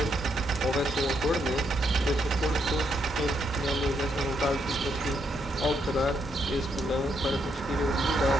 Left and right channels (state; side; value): normal; both; correlation 0.77